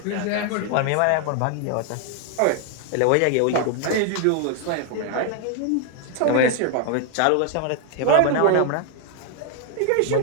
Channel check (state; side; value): different; both; correlation 0.01